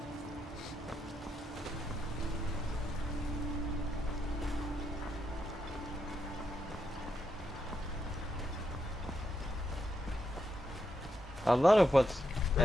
A lot of what's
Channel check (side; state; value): both; normal; correlation 0.82